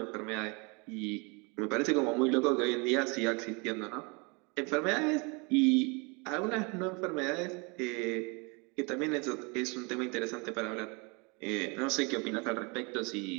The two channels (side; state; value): left; quieter; 30.6 dB